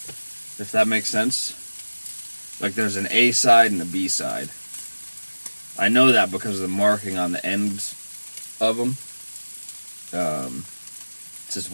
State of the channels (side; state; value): both; inverted; correlation -1.00